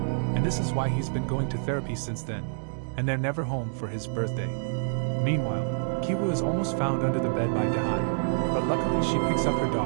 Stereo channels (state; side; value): silent; left; digital silence